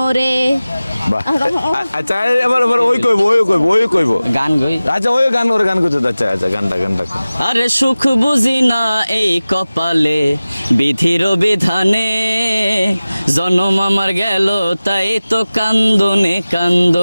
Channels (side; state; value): both; inverted; correlation -0.97